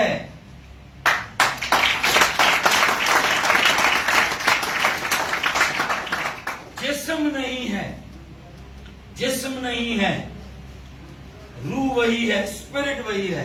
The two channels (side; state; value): both; identical; correlation 1.00